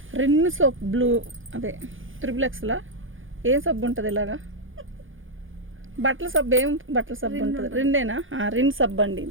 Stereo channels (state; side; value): late; left; 0.58 ms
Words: రిన్ సోప్ బ్లూ, అదే త్రిబుల్ ఏం సబ్బు ఉంటుంది ఇలాగా, బట్టల సబ్బు, ఏం బట్టల సబ్బు ఉంటుంది, రిన్నేనా, రిన్ సబ్బు అండి.